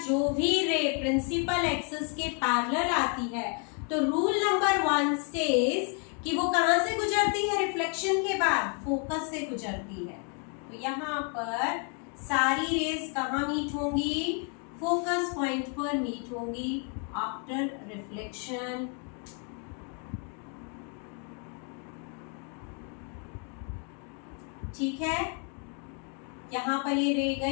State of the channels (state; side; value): quieter; right; 39.5 dB